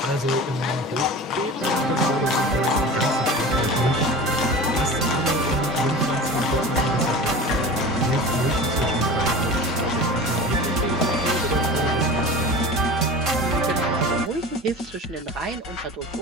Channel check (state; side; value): normal; both; correlation 0.35